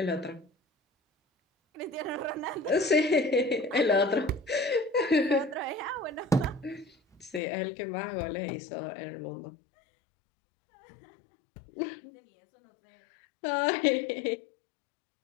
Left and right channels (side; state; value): right; drops out; at 7.4 s